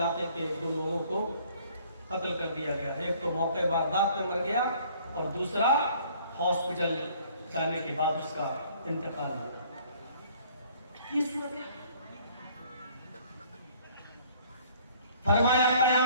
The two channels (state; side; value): inverted; both; correlation -0.57